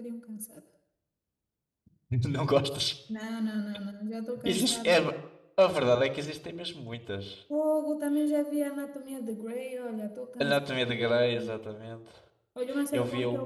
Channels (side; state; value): both; identical; correlation 1.00